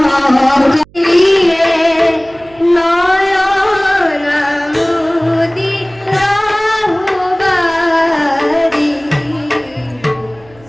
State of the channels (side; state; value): right; noise; hum, 27 dB below the sound